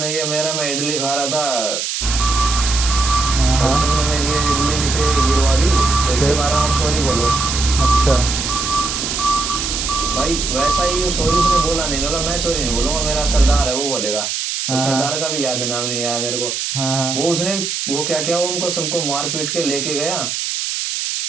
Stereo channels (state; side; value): noise; right; hiss, 2 dB below the sound